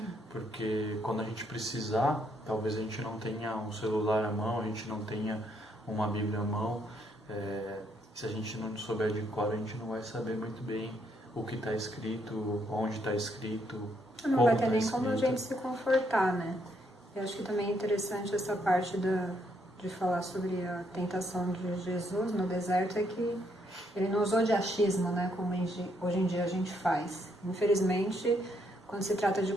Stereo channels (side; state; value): both; normal; correlation 0.73